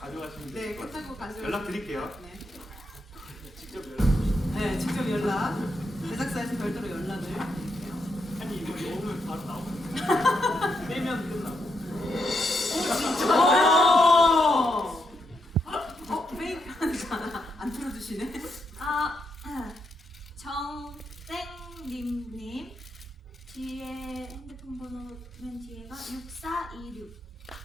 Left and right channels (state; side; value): normal; both; correlation 0.81